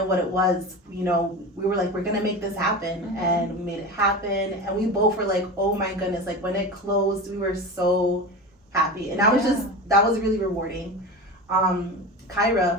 what it was. You know, we were like, we're gonna make this happen. Mm-hmm. And we made it happen. And we both were like, oh my goodness, like when it closed, we were so happy. And that was really rewarding.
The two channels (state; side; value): normal; both; correlation 0.28